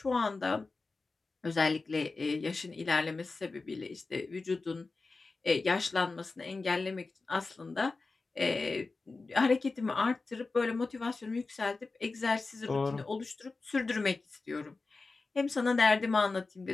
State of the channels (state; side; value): quieter; right; 3.8 dB